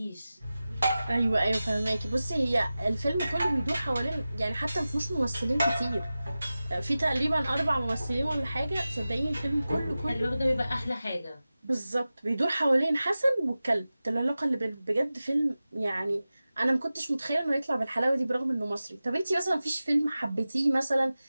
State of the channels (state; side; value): inverted; both; correlation -0.95